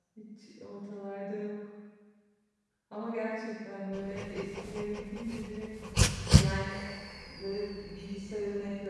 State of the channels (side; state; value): both; identical; correlation 1.00